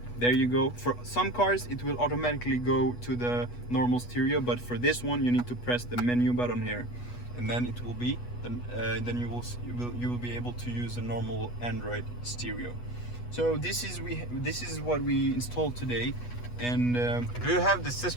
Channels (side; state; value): right; late; 8.2 ms